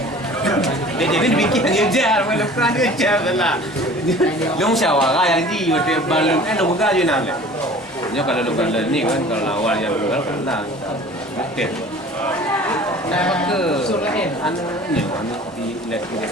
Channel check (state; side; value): normal; both; correlation 0.45